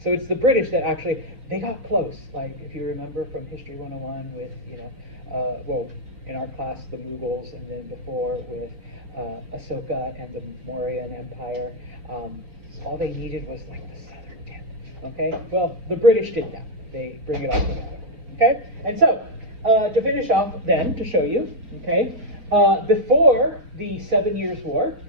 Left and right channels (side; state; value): left; late; 4.4 ms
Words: So it's the British that actually, they got close, like if you remember from History 101 with, in our class, the Mughals, and then before with Ashoka and the Mauryan Empire, all they needed was like the southern tip, okay? Well, the British did that. They bring it all together, okay? And so, to finish off then, to show you, okay, before the 7 Years' War,